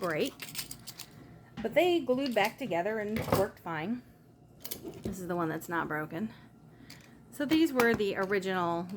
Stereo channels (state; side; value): identical; both; correlation 1.00